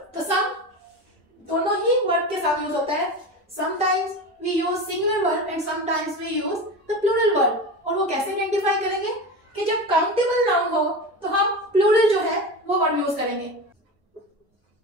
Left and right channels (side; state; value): both; normal; correlation 0.25